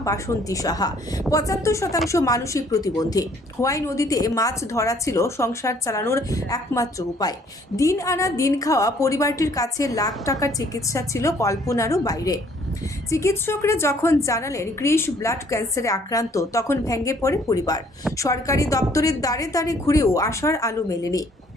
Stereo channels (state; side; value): normal; both; correlation 0.61